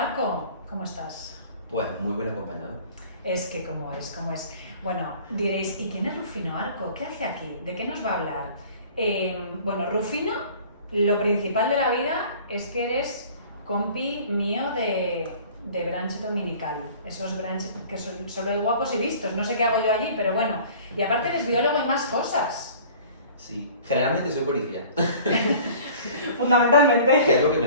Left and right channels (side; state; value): both; inverted; correlation -0.47